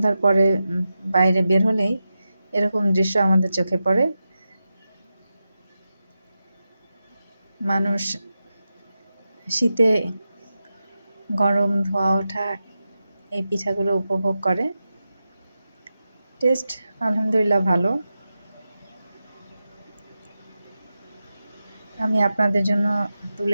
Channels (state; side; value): inverted; both; correlation -0.90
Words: পরে বাইরে বের হলেই এরকম দৃশ্য আমাদের চোখে পড়ে। মানুষ শীতে গরম ধোয়া ওঠা এই পিঠাগুলো উপভোগ করে। টেস্ট আলহামদুলিল্লাহ ভালো। আমি আপনাদের জন্য